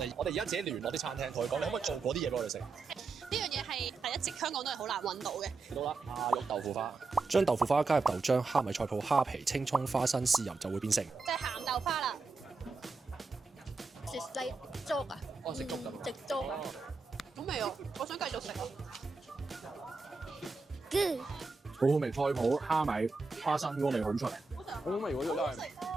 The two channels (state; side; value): quieter; left; 4.0 dB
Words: 我哋而家自己聯絡啲餐廳，同佢講，你可唔可以做嗰啲嘢俾我哋食？呢樣嘢係一直香港都係好難揾到嘅。到啦，蝦肉豆腐花，將豆腐花加入豆漿、蝦米菜脯、蝦皮、青葱、花生、豉油就會變成即係鹹豆花啦。食西粥啊？哦，食粥咁。食粥啊？好味啊！我想繼續食啊！好好味，菜脯、蝦米、花生嗰個味好出嚟，好好味喎！呢個真係，